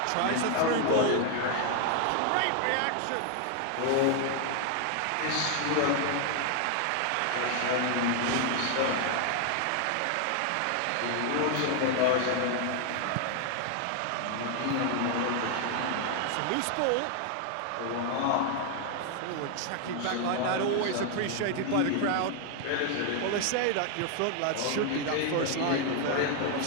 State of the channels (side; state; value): both; different; correlation 0.00